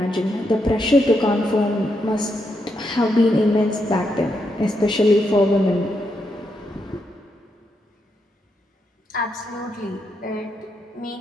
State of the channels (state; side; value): normal; both; correlation 0.81